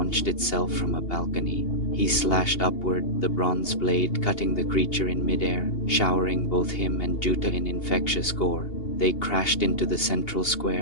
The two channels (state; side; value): late; right; 2.8 ms